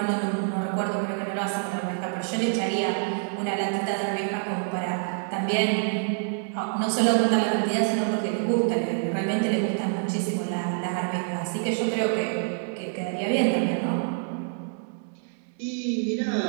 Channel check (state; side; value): silent; left; 60 dB below the other